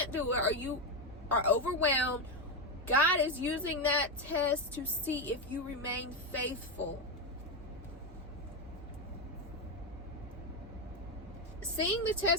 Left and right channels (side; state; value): both; normal; correlation 0.10